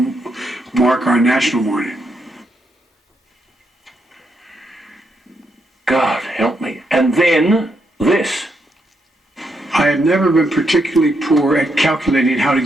mark our national mourning. God help me. And then this. I have never been particularly poor at calculating how to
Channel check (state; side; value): normal; both; correlation 0.79